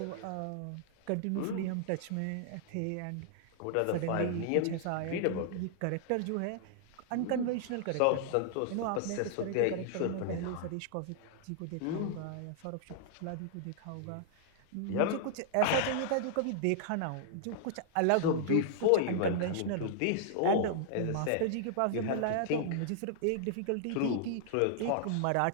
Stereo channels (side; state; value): both; different; correlation -0.01